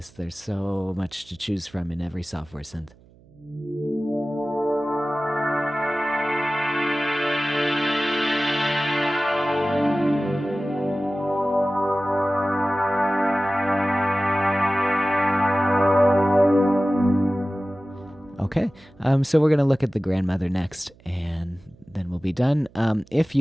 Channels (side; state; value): right; noise; hum, 27 dB below the sound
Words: There's so much to choose from in every software synth. Okay, so we're going to look at the Grandmother next, and then we'll be done. If